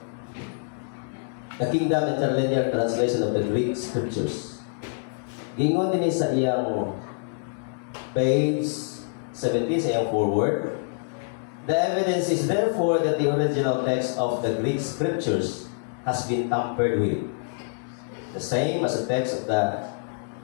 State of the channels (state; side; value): silent; right; 61 dB below the other